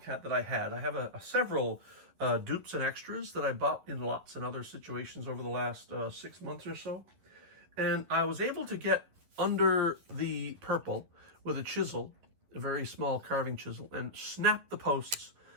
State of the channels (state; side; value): late; left; 11 ms